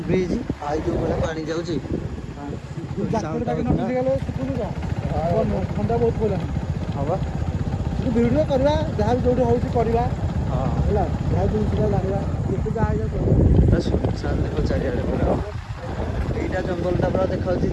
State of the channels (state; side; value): identical; both; correlation 1.00